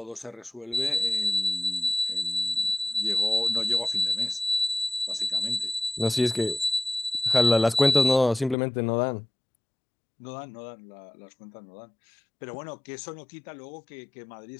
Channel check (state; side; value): drops out; right; at 8.6 s